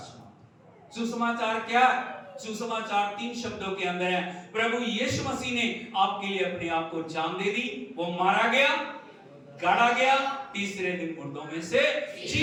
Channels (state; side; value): identical; both; correlation 1.00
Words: सुसमाचार क्या? सुसमाचार 3 शब्दों के अंदर है। प्रभु यीशु मसीह ने आपके लिए अपने आप को जान दे दी, वो मारा गया, गाड़ा गया, तीसरे दिन मुर्दों में से